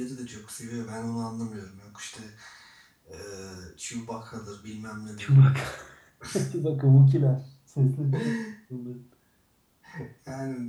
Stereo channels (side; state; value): both; identical; correlation 1.00